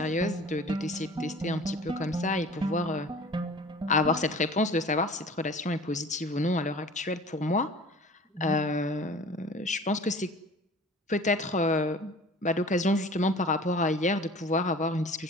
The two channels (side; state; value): both; normal; correlation 0.44